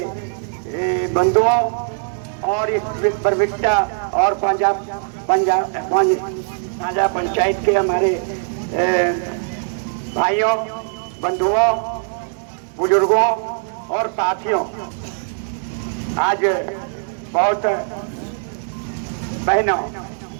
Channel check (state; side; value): silent; left; digital silence